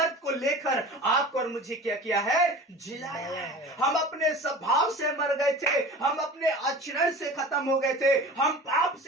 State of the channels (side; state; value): both; normal; correlation 0.38